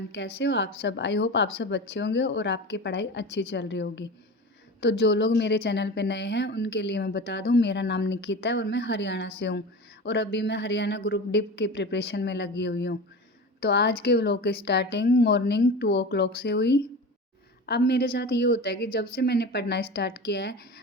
कैसे हो आप सब। आई होप आप सब अच्छे होंगे और आपकी पढ़ाई अच्छी चल रही होगी। तो जो लोग मेरे चैनल पे नए हैं उनके लिए मैं बता दूं, मेरा नाम निकिता है और मैं हरियाणा से हूं। और अभी मैं हरियाणा ग्रुप डी की प्रिपरेशन में लगी हुई हूं। तो आज के व्लॉग की स्टार्टिंग मॉर्निंग 2 o'clock से हुई। अब मेरे साथ ये होता है कि जब से मैंने पढ़ना स्टार्ट किया है,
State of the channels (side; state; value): both; normal; correlation 0.31